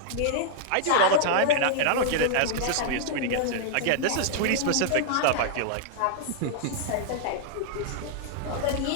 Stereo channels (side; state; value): both; different; correlation -0.01